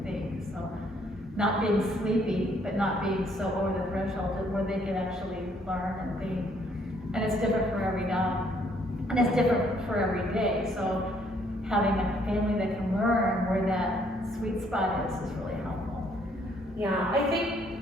think. So not being sleepy, but not being so over the threshold where they can actually learn and think. And it's different for every dog. And it's different for every day. So having a family that can learn where that sweet spot is really helpful. Yeah, I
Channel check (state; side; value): normal; both; correlation 0.66